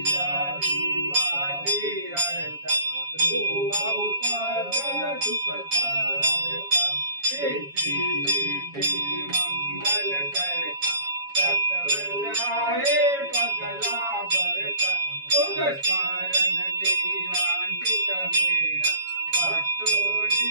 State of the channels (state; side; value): late; left; 7.2 ms